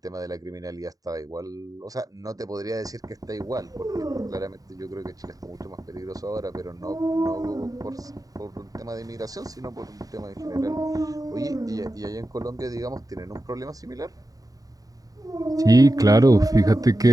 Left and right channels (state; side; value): late; left; 0.18 ms